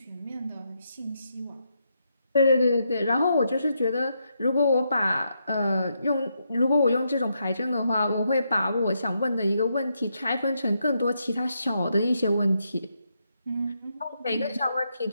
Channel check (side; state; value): both; inverted; correlation -0.80